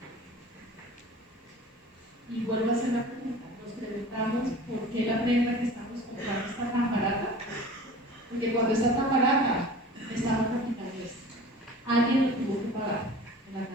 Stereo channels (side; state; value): both; normal; correlation 0.41